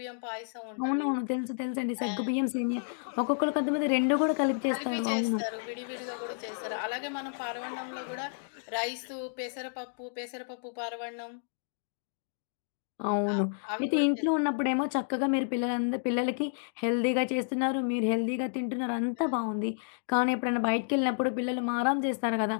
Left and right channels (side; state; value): right; silent; digital silence